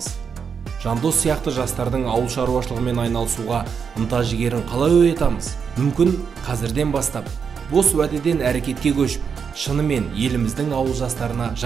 Жандос сияқты жастардың ауыл шаруашылығымен айналысуға ынта жігерін қалай оятамыз? Мүмкін қазірден бастап бос уәдеден әрекетке көшіп, шынымен еліміздің ауыл жастарына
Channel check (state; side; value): quieter; left; 6.4 dB